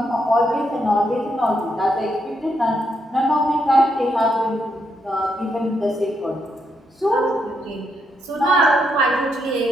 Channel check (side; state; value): both; normal; correlation 0.79